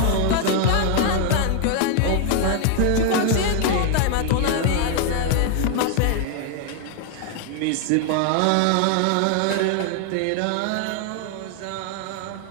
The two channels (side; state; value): both; different; correlation 0.00